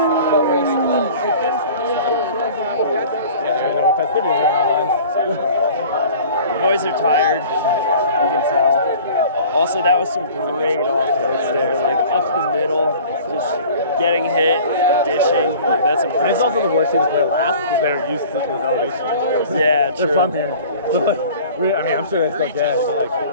The boys are tired. You can tell. Also, that was some great offloads there, like up the middle, just getting hit, dishing. Like, that's And impressive. it's also the worst team to play last because they're used to this elevation. Yeah, They're true. from here. So like, I'm sure they're still gassed, but like,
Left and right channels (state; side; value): inverted; both; correlation -0.45